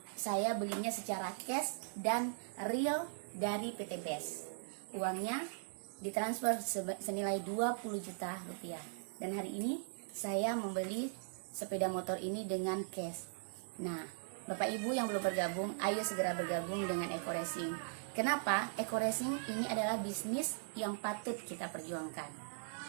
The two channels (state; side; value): silent; left; digital silence